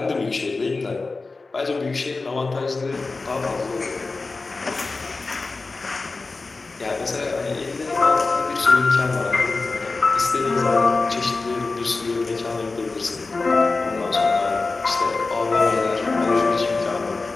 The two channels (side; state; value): right; quieter; 3.7 dB